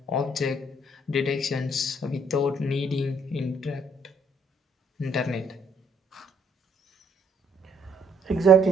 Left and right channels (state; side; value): normal; both; correlation 0.67